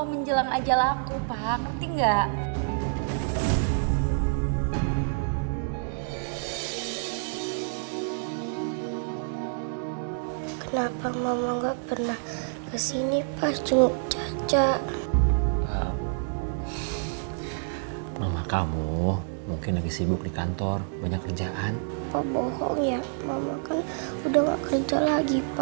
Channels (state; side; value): silent; left; digital silence